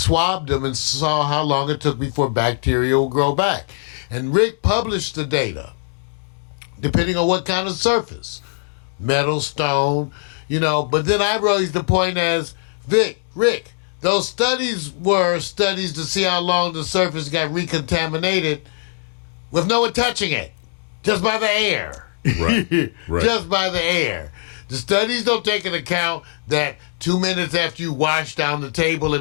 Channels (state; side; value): silent; right; digital silence